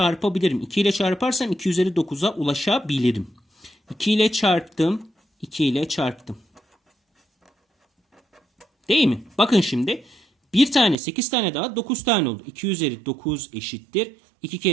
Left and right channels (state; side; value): drops out; left; at 11.0 s